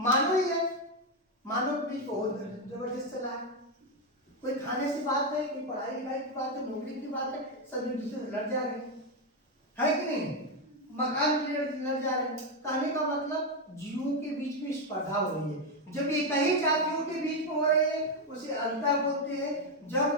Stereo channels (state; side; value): normal; both; correlation 0.05